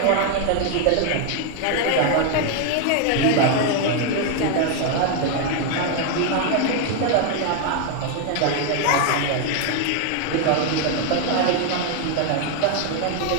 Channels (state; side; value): different; both; correlation 0.01